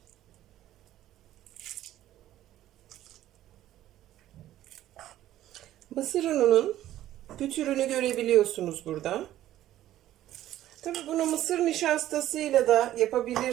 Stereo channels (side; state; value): left; quieter; 13.3 dB